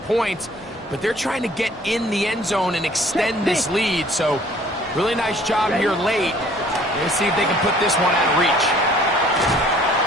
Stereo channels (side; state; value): both; normal; correlation 0.55